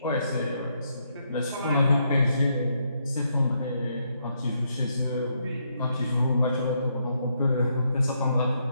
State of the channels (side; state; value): both; inverted; correlation -0.77